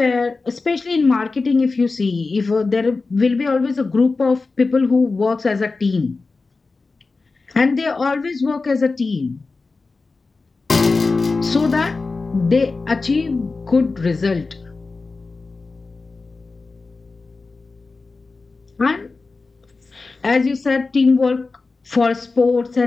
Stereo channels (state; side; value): quieter; right; 3.9 dB